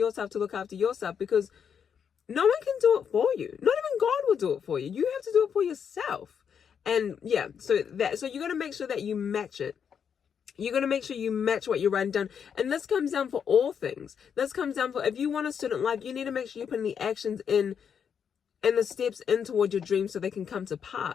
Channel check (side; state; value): right; quieter; 7.4 dB